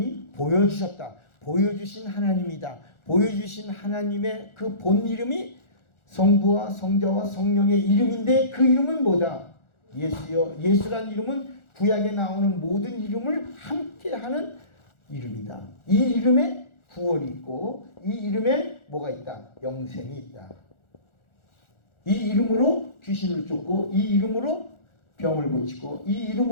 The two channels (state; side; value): late; right; 1.4 ms